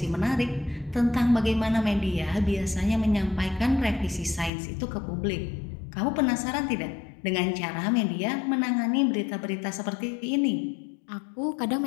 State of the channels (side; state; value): right; drops out; at 4.5 s